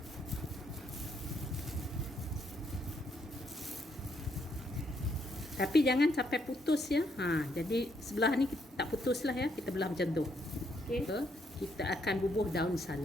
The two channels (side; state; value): both; normal; correlation 0.74